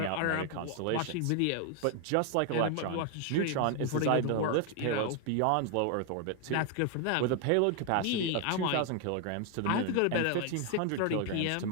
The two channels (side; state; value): both; different; correlation 0.01